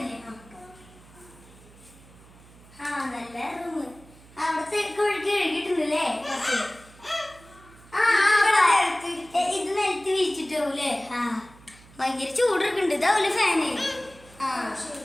ഭയങ്കര ചൂടൊക്കെ ഇതാവൂലെ ഫാന്?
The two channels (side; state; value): right; noise; hum, 23 dB below the sound